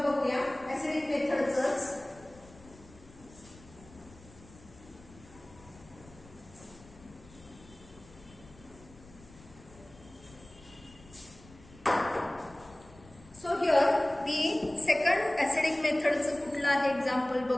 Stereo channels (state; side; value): noise; left; rumble, 22 dB below the sound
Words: बघूया ऍसिडिक मेथडचंच. So here the second acidic मेथडचं कुठलं आहे एक्झाम्पल